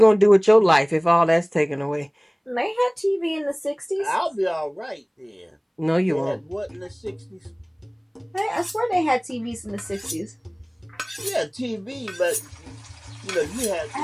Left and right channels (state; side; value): identical; both; correlation 1.00